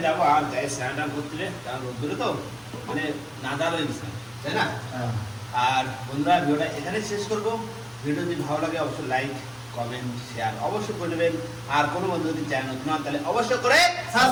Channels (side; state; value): both; identical; correlation 1.00